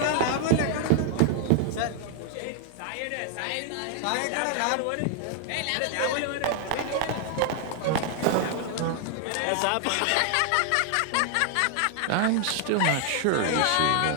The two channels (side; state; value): both; different; correlation 0.00